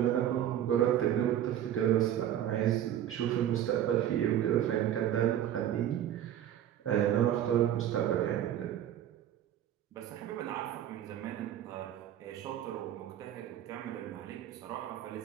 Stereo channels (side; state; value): left; quieter; 11.0 dB